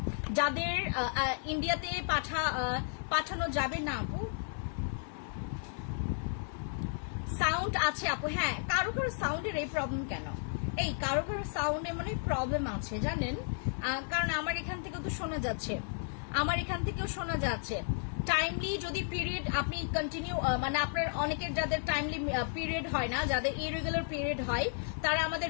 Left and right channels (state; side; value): silent; right; 55 dB below the other